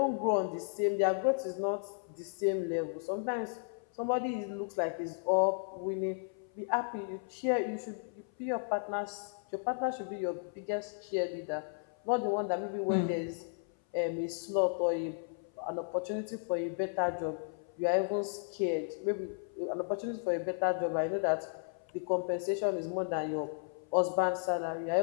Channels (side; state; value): right; silent; 55 dB below the other